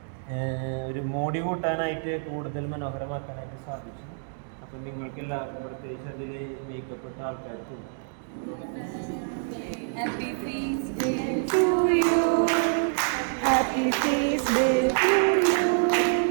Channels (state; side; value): silent; left; digital silence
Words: ഒരു മോടി കൂട്ടാനായിട്ട് കൂടുതൽ മനോഹരമാക്കാനായിട്ട് സാധിച്ചു. അപ്പം നിങ്ങൾക്ക് എല്ലാവർക്കും പ്രത്യേകിച്ച് അതിൽ മേക്കപ്പെട്ട ആൾക്കാർക്കും Happy feast day to you. Happy feast day to you.